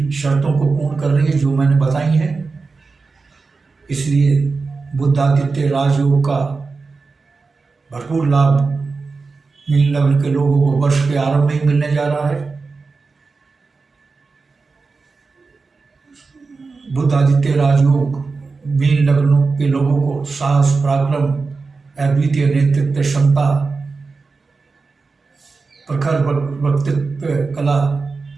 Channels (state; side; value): quieter; left; 4.3 dB